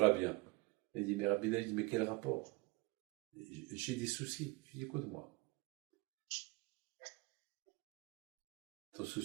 bien. Il dit, mais Rabbi David, mais quel rapport? J'ai des soucis. Je dis, écoute-moi. Ton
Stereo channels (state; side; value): quieter; left; 24.0 dB